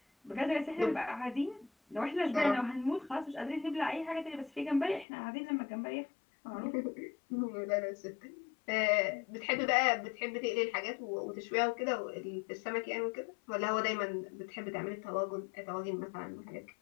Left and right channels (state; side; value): drops out; right; at 5.1 s